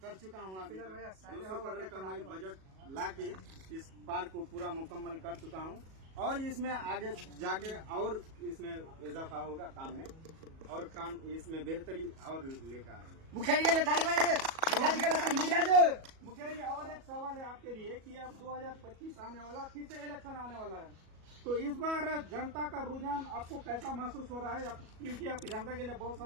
कर चुका हूँ। अभी 200 करोड़ का मैं बजट लाके इस पार्क को पूरा मुकम्मल कर चुका हूँ और इसमें आगे जाके और इसमें इजाफा होगा काम में, और काम इसमें बेहतरी और लेकर आएंगे। मुखिया जी के लिए ताली बजाइए। मुखिया जी के लिए मुखिया जी और एक सवाल है आपके लिए कि अब 2025 आने वाला, फिर से इलेक्शन आने वाला है, तो इस बार जनता का रुझान आपको कैसा महसूस हो रहा है? क्योंकि आप जनता के लिए बहुत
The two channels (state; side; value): late; left; 37 ms